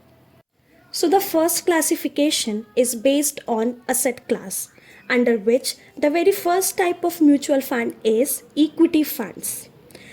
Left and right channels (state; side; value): identical; both; correlation 1.00